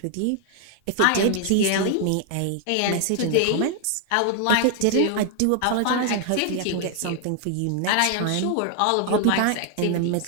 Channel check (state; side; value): different; both; correlation 0.00